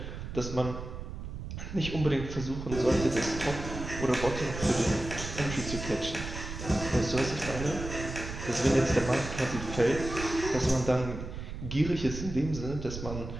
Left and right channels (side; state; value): right; noise; rumble, 8 dB below the sound